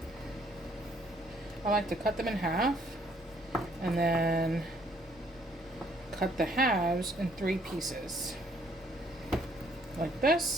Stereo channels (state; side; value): normal; both; correlation 0.65